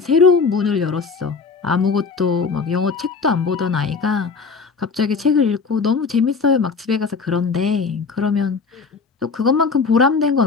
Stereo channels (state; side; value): quieter; right; 4.9 dB